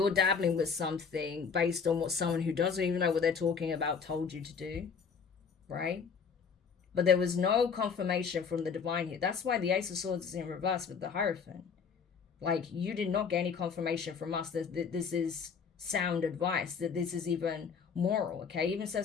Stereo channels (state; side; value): quieter; right; 6.1 dB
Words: dabbling with something based on what someone who doesn't even know what they're talking about told you to do, right? But there was no confirmation from the divine here. That's why the Ace of Swords is in reverse with the Hierophant. Like, you did not get any confirmation from us that this is sound advice, that this is even moral, okay? It even